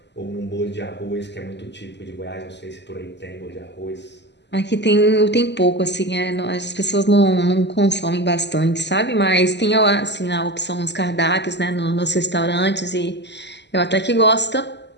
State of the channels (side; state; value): right; late; 0.51 ms